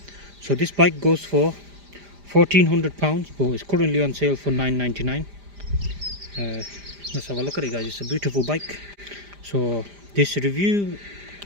So this bike goes for £1,400, but it's currently on sale for £999. Let's have a look at it guys, it's a beautiful bike. So this review,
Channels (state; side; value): late; left; 5.0 ms